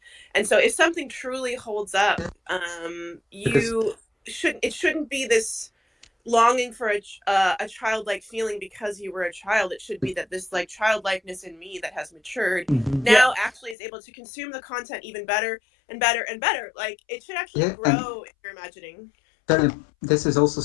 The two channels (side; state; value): right; drops out; at 13.8 s